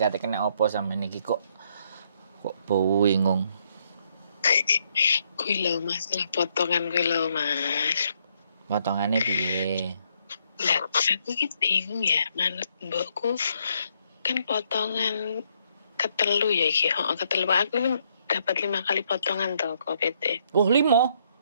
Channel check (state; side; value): inverted; both; correlation -0.72